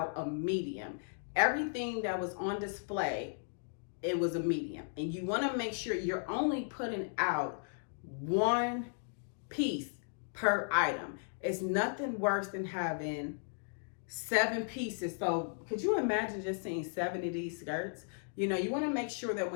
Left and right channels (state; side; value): silent; right; digital silence